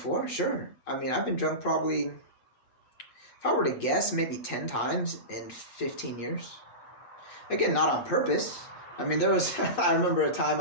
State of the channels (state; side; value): late; right; 8.2 ms